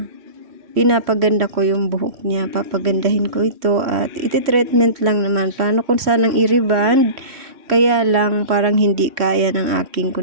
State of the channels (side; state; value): left; late; 3.1 ms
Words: pinapaganda ko yung buhok niya, papagandahin ko ito at iti-treatment lang naman. Plano kung sanang i-reband, kaya lang parang hindi kaya ng aking